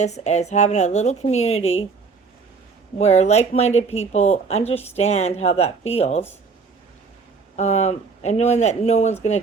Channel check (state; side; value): quieter; left; 4.9 dB